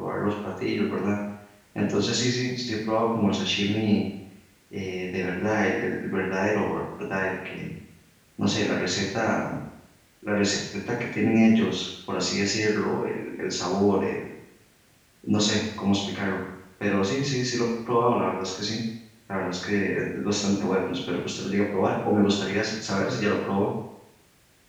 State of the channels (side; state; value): both; identical; correlation 1.00